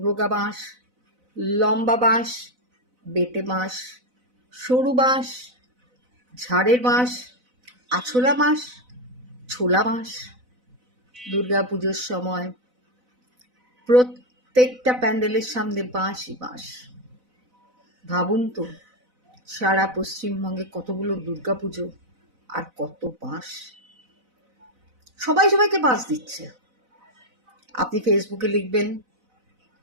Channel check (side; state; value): left; late; 4.0 ms